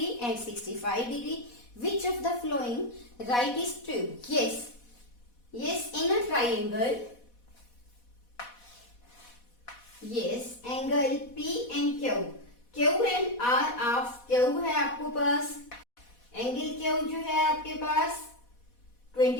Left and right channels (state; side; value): late; right; 4.1 ms